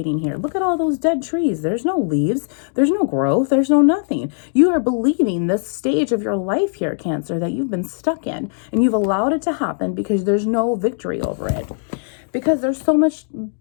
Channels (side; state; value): right; silent; digital silence